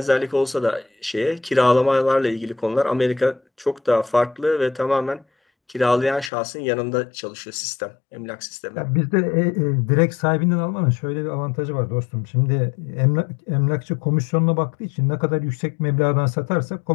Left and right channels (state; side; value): drops out; right; at 6.3 s